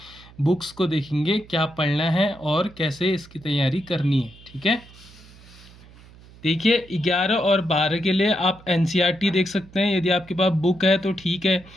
बुक्स को देखेंगे, क्या पढ़ना है और कैसे इसकी तैयारी करनी है। ठीक है, देखिए 11 और 12 के लिए आप एनसीईआरटी देख सकते हैं। यदि आपके पास बुक है तो ठीक है,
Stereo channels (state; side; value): noise; right; hum, 22 dB below the sound